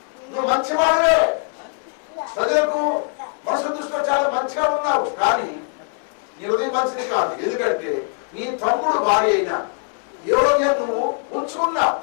నువ్వు మంచివాడివే, ప్రజలకు మనసు దృష్టిలో చాలా మంచిగా ఉన్నావు, కానీ నీ హృదయం మంచిది కాదు. ఎందుకంటే నీ తమ్ముడు భార్య అయినా యోగ్యం నువ్వు ఉంచుకున్నావు.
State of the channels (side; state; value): right; silent; 56 dB below the other